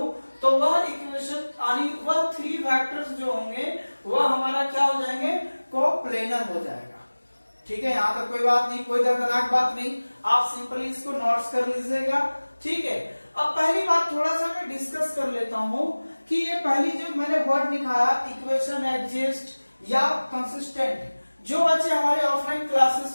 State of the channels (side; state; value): both; inverted; correlation -1.00